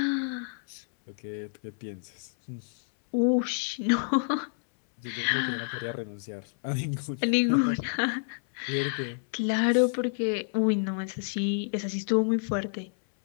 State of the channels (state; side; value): silent; right; 59 dB below the other